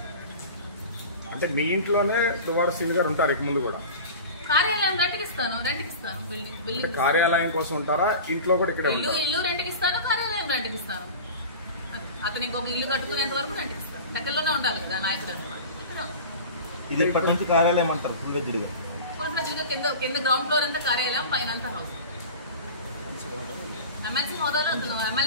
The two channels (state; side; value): inverted; both; correlation -0.35